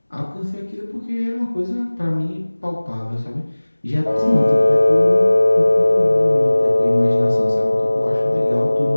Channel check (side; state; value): both; inverted; correlation -1.00